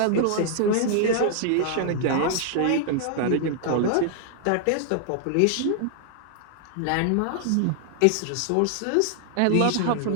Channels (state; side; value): different; both; correlation 0.00